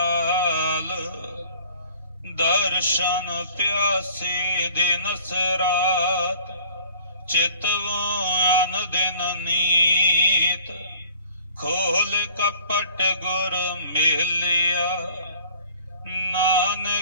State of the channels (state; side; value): inverted; both; correlation -0.49